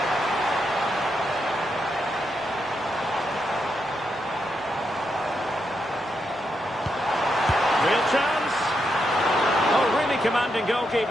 Real chance. Oh, really commanding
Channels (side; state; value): both; normal; correlation 0.82